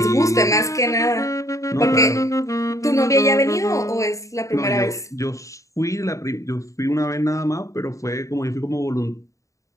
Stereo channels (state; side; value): late; right; 0.15 ms